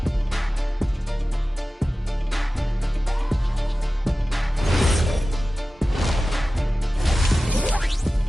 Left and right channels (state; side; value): normal; both; correlation 0.96